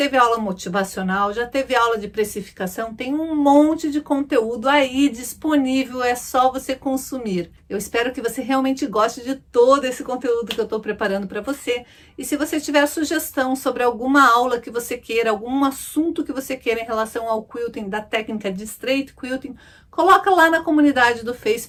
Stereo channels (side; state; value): both; identical; correlation 1.00